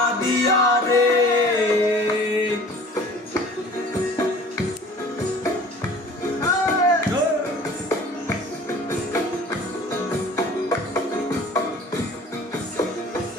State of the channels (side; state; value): both; normal; correlation 0.47